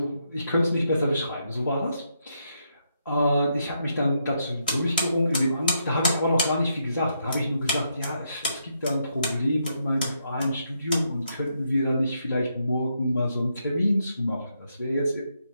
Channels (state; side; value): inverted; both; correlation -0.79